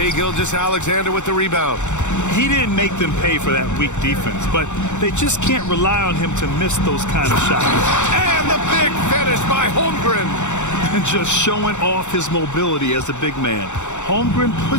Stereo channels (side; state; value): right; late; 0.84 ms